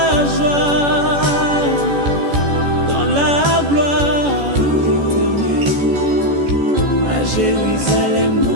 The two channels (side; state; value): left; late; 14 ms